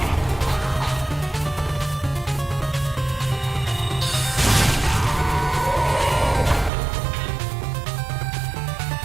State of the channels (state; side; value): drops out; left; at 6.7 s